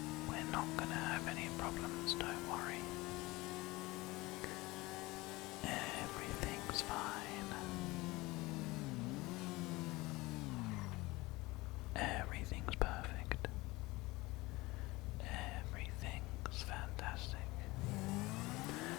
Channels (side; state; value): right; quieter; 21.3 dB